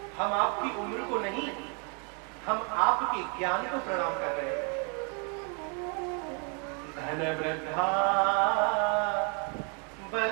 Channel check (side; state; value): left; quieter; 37.5 dB